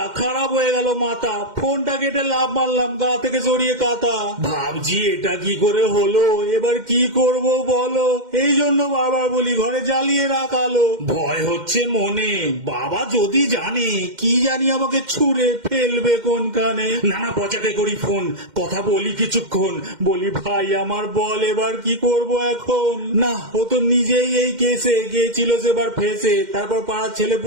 খারাপ হয়ে গেল মাথা, ফোনটা কেটে লাভ মারলাম, গা থেকে সরিয়ে কাতা। ভাবছি এটা কি করে হলো, এবার কি করব বলো। এই জন্য বারবার বলি ঘরে জ্বালিয়ে রাখালো। ভয় হচ্ছে মনে, বাবা যদি জানে কি জানি আমাকে ছুঁড়ে ফেলবে কোনখানে। নানা পচাকে করি ফোন, কথা বলি কিছুক্ষণ, বলি ভাই আমার বল এবার কি করব এখন। না ও তো নিজেই এই কেসে গিয়েছিল সেবার ফেসে, তারপর পাড়ার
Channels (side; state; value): left; late; 2.1 ms